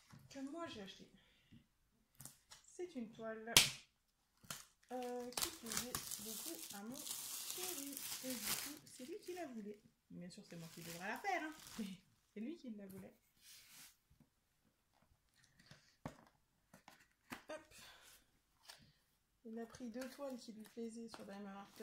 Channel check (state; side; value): identical; both; correlation 1.00